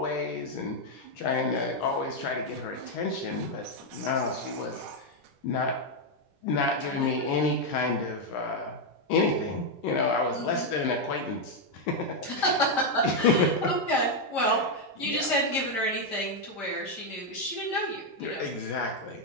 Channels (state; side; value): normal; both; correlation 0.01